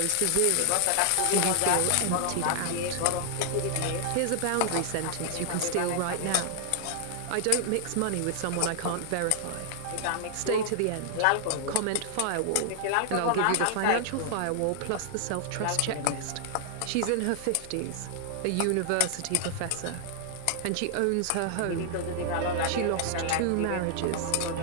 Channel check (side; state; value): both; different; correlation 0.00